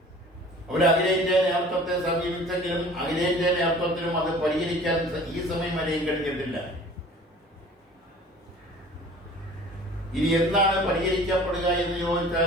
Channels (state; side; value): normal; both; correlation 0.46